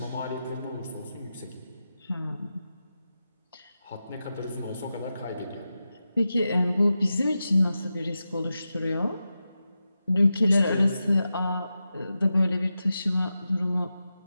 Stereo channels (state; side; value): inverted; both; correlation -0.91